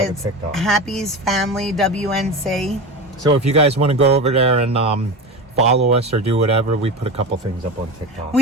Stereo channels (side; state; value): both; normal; correlation 0.26